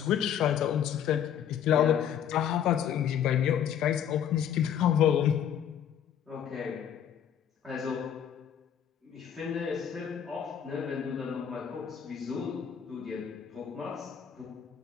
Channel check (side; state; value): right; quieter; 9.1 dB